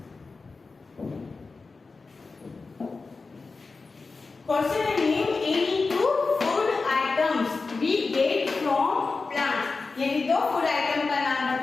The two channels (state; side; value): quieter; right; 4.1 dB